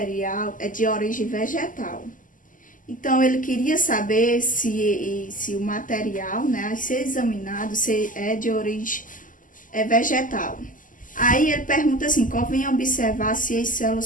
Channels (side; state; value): right; late; 0.38 ms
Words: é de origem vegetal. Então, ele queria saber se o material, né, a ser examinado, se é de origem vegetal. Aí ele pergunta assim: convém observar se as